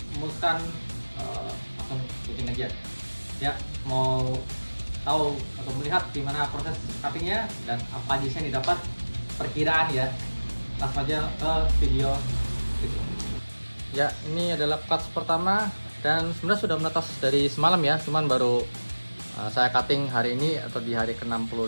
memutuskan langsung bikin aja ya, mau tahu atau melihat gimana proses cuttingnya dan apa aja yang didapat, perkiraan ya. Langsung aja ke video itu. Ya, ini adalah cuts pertama dan sebenarnya sudah menetas dari semalam ya, cuman baru saya cutting hari ini atau di hari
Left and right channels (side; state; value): both; inverted; correlation -1.00